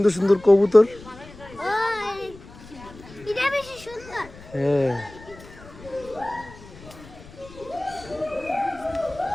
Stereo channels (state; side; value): noise; left; rumble, 19 dB below the sound